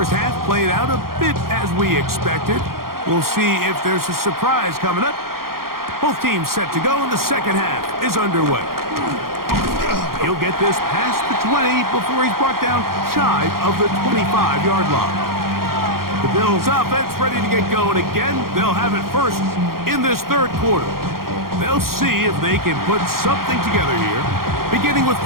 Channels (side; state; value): left; late; 0.92 ms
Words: half played out a bit as we expected. We'll see if there's a surprise coming up. Both teams set to go, and the second half is underway. He'll get this past the 20 before he's brought down shy of the 25-yard line. The Bills' offense ready to get going again. They'll have it first in this third quarter. They'll see if they can put something together here, beginning with